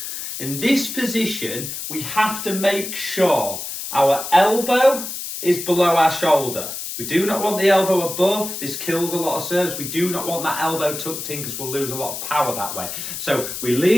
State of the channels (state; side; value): noise; left; hiss, 7 dB below the sound